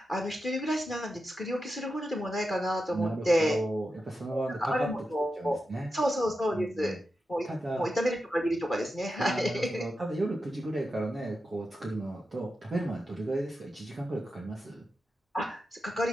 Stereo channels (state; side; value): normal; both; correlation 0.89